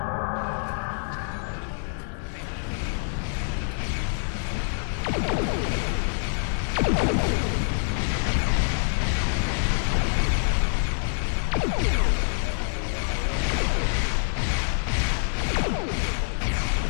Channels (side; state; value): right; silent; digital silence